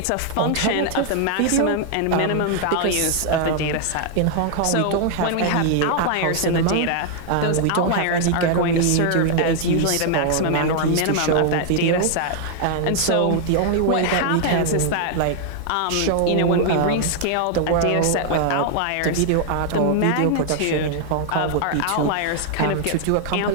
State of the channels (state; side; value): different; both; correlation 0.00